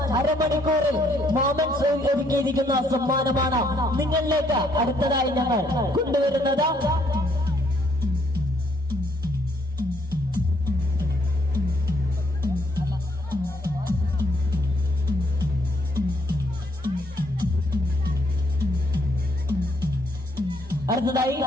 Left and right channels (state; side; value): normal; both; correlation 0.69